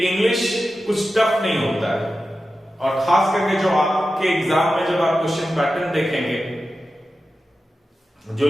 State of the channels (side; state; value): both; normal; correlation 0.92